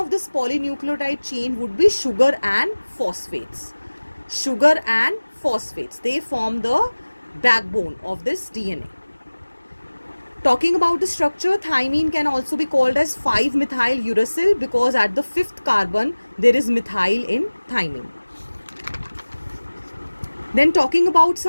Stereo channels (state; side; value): inverted; both; correlation -1.00